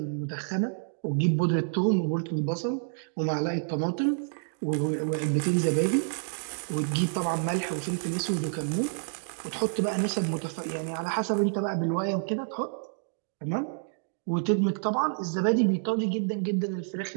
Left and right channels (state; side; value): silent; left; digital silence